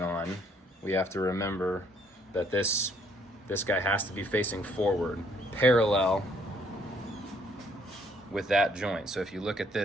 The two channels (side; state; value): both; normal; correlation 0.66